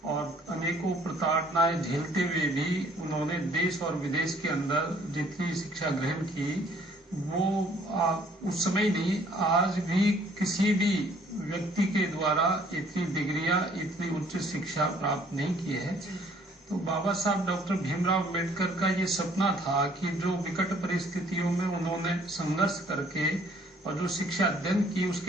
और अनेकों प्रताड़नाएं झेलते हुए भी उन्होंने देश और विदेश के अंदर जितनी शिक्षा ग्रहण की वो उस समय नहीं, आज भी किसी भी व्यक्ति के द्वारा इतनी डिग्रियां, इतनी उच्च शिक्षा प्राप्त नहीं की है। तो बाबा साहब डॉक्टर भीमराव अंबेडकर का ये सपना था कि जो विकट परिस्थितियों में उन्होंने संघर्ष करके और जो शिक्षा अध्ययन की,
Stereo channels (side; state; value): both; normal; correlation 0.60